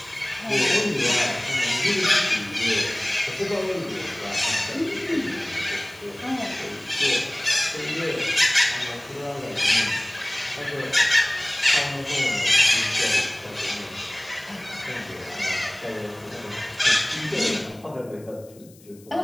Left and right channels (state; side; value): noise; left; hiss, 26 dB below the sound